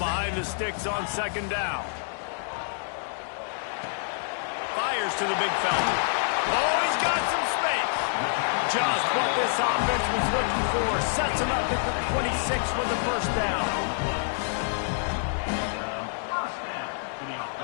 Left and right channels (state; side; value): silent; right; digital silence